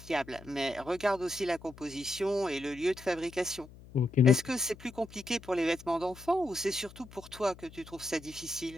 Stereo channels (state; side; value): noise; left; hum, 19 dB below the sound